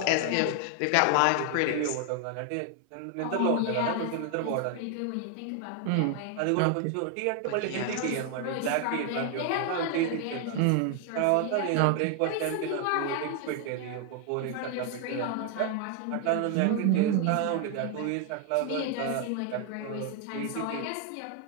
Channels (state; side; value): different; both; correlation 0.00